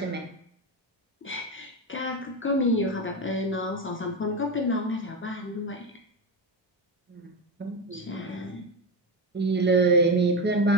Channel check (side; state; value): both; normal; correlation 0.16